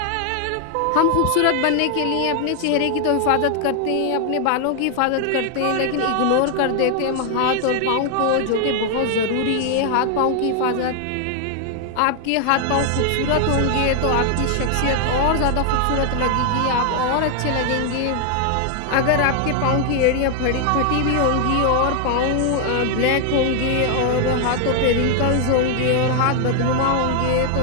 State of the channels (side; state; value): both; different; correlation 0.00